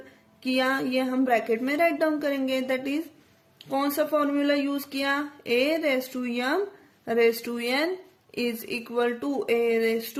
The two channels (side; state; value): both; identical; correlation 1.00